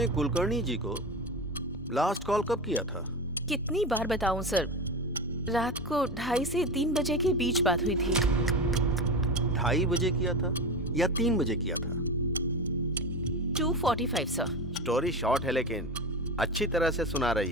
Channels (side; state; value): both; normal; correlation 0.23